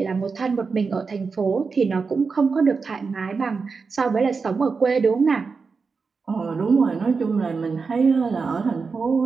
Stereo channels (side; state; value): left; quieter; 4.8 dB